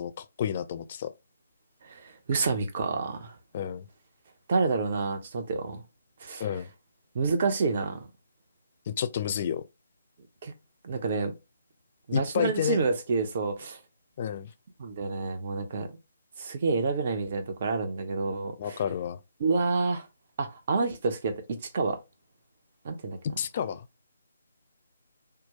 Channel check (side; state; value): both; inverted; correlation -0.70